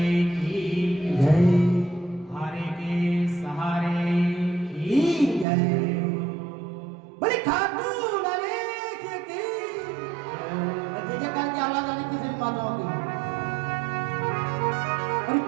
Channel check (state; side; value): drops out; left; at 5.5 s